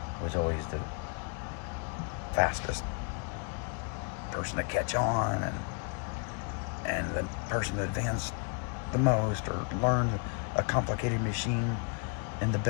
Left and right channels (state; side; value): quieter; right; 36.7 dB